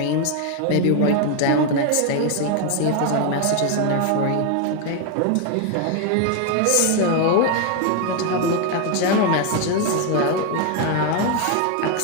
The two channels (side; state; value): both; different; correlation 0.01